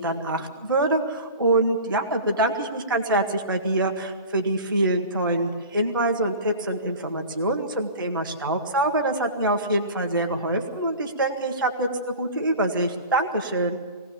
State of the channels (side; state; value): both; inverted; correlation -0.36